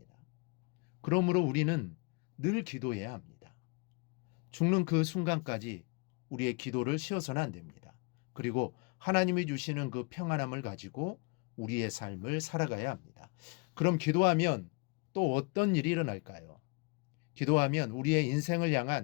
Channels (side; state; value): right; quieter; 30.0 dB